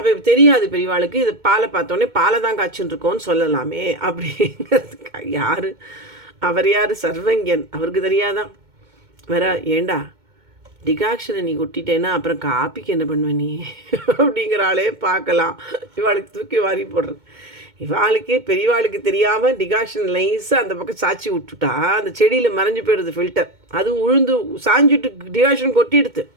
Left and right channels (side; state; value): left; late; 2.2 ms